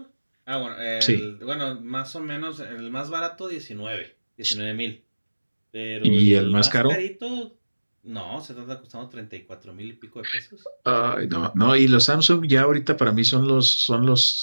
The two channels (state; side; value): inverted; both; correlation -1.00